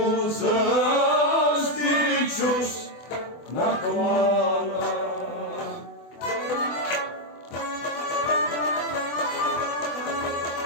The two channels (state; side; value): late; right; 24 ms